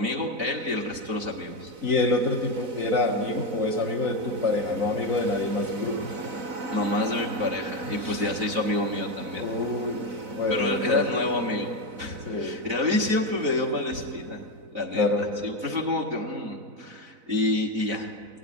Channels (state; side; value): late; left; 4.0 ms